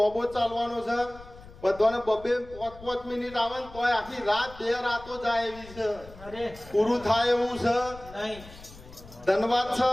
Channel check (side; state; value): left; noise; rumble, 19 dB below the sound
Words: ચાલવાનો છે. બધાને બબે 5 મિનિટ આવે ને તોય આખી રાત 2 રાતો જાય એવી છે. પૂરું થાય એવું છે. ધન્યવાદ છે.